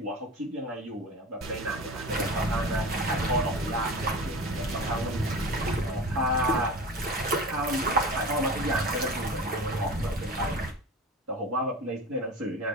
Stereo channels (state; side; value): normal; both; correlation 0.32